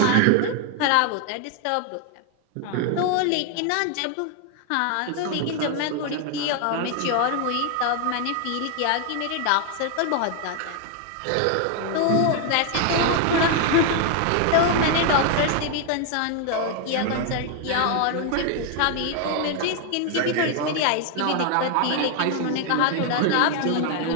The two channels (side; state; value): both; different; correlation 0.01